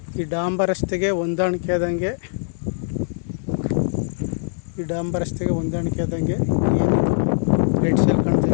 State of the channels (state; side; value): silent; right; digital silence